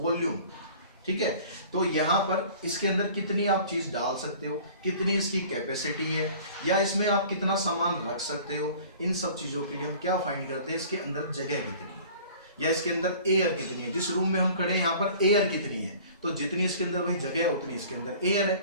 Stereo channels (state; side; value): inverted; both; correlation -0.47